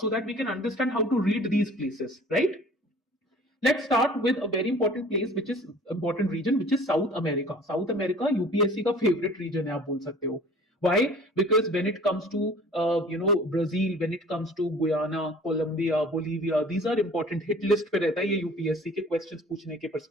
so that we can understand how to read these places, right? Let's start with a very important place, which is important region, which is South America. South America UPSC का favorite region है, आप बोल सकते हो. Why? Because when it comes to Brazil, when it comes to Guyana, Colombia, Bolivia, these are important. Hit list पे रहता है ये UPSC के questions पूछने के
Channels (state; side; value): normal; both; correlation 0.47